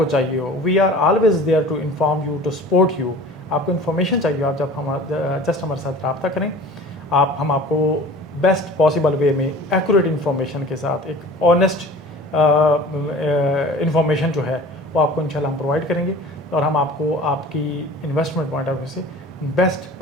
चाहिए हो, we are always there to inform you, to support you. आपको इन्फॉर्मेशन चाहिए, आप जब हम जस्ट हमारे साथ रब्ता करें, हम आपको बेस्ट पॉसिबल वे में एक्यूरेट इन्फॉर्मेशन के साथ एक ऑनेस्ट इन्फॉर्मेशन जो है वो आपको इंशाल्लाह हम प्रोवाइड करेंगे, और हम आपको आपकी इन्वेस्टमेंट पॉइंट ऑफ व्यू से बेस्ट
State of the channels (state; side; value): normal; both; correlation 0.42